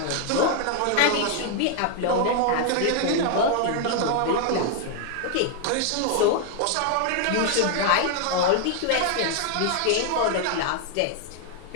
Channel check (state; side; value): different; both; correlation 0.00